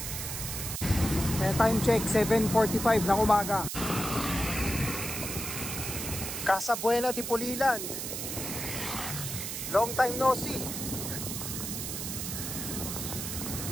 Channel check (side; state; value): right; noise; hiss, 5 dB below the sound